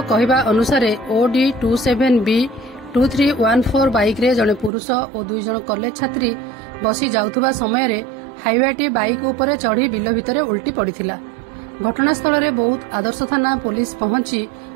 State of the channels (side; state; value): left; drops out; at 4.7 s